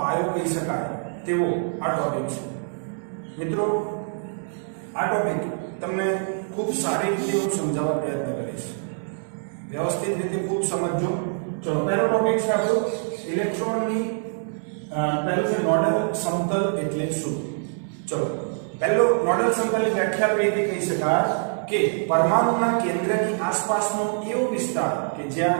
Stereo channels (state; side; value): silent; left; 61 dB below the other